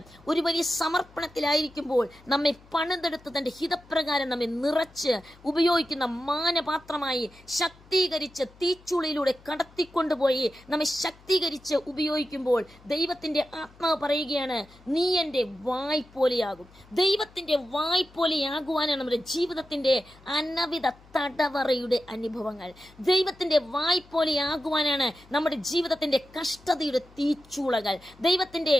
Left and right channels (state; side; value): noise; left; hum, 25 dB below the sound